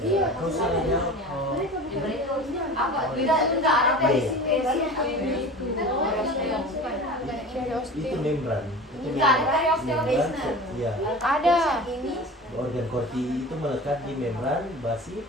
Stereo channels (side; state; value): both; normal; correlation 0.36